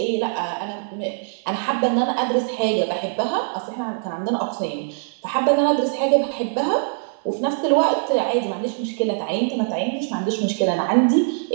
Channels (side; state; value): left; silent; 62 dB below the other